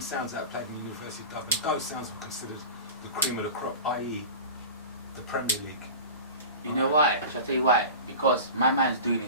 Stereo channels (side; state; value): both; inverted; correlation -0.34